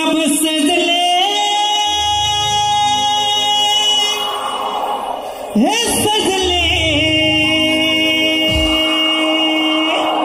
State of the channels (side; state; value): both; identical; correlation 1.00